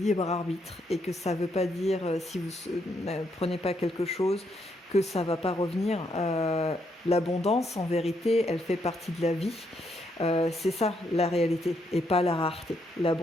arbitre et que ça ne veut pas dire si vous ne prenez pas quelque chose que ça ne va pas revenir. L'abondance, en vérité, elle fait partie de la vie. C'est ça la réalité et pas la rareté.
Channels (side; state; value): both; normal; correlation 0.76